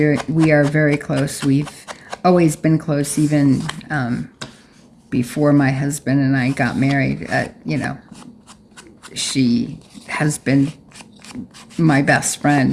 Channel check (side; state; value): both; identical; correlation 1.00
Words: are very close. We've always been close, even before my husband and I got married. You know, she has been my best